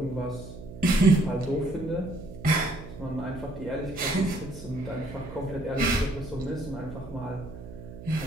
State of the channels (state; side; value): noise; right; hum, 13 dB below the sound